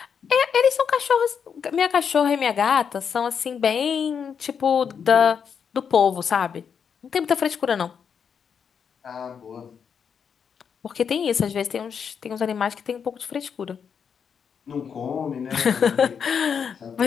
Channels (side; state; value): right; quieter; 7.0 dB